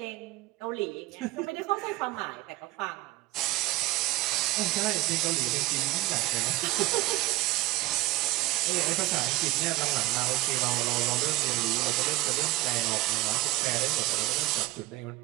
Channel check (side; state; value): left; quieter; 18.5 dB